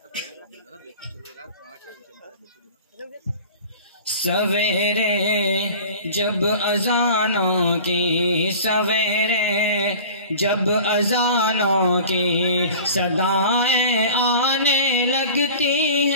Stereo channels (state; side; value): inverted; both; correlation -0.41